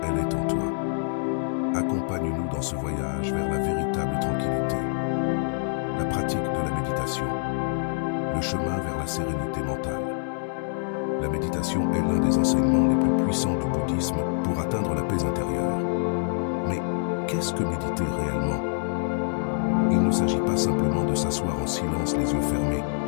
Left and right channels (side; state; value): right; silent; 61 dB below the other